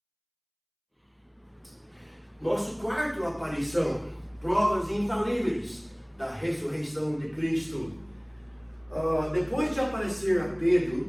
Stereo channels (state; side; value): identical; both; correlation 1.00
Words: Nosso quarto aparição, provas infalíveis da ressurreição de Cristo. Depois de aparecer a